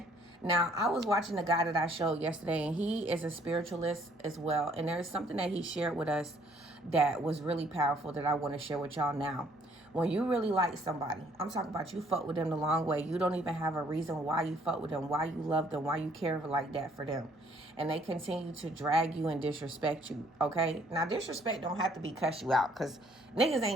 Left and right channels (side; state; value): both; normal; correlation 0.62